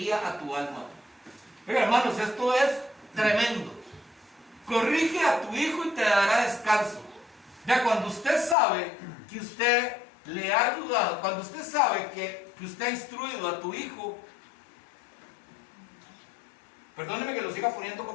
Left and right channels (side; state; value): right; drops out; at 8.6 s